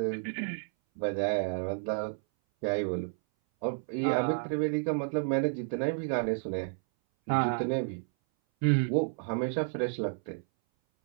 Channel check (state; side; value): silent; left; 57 dB below the other